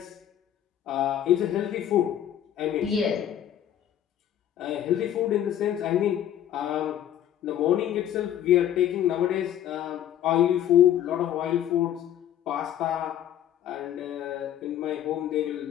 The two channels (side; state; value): right; quieter; 10.9 dB